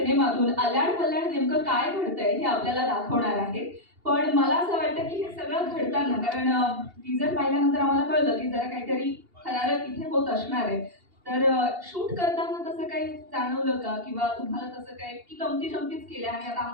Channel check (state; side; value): late; left; 2.8 ms